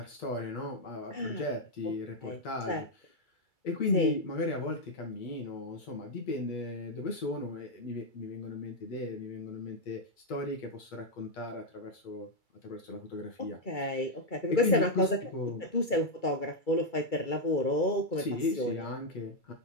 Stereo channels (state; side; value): late; right; 2.3 ms